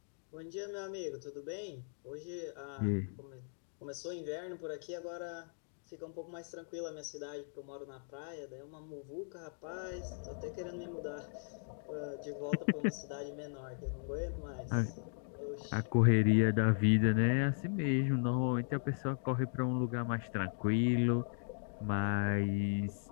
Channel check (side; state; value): right; silent; digital silence